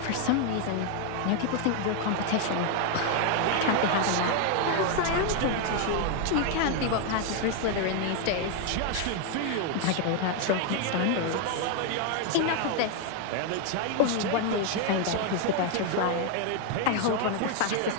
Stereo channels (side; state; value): both; different; correlation 0.01